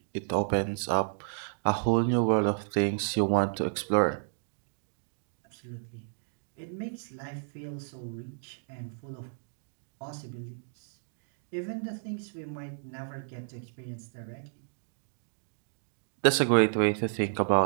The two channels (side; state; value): left; silent; digital silence